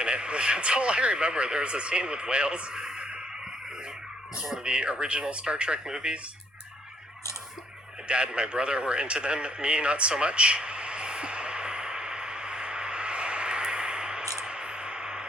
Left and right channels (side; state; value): both; normal; correlation 0.69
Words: it. That's all I remember. There was a scene with whales. It was one of the original Star Trek movies. My dad and my brother were into them. Me, not so much.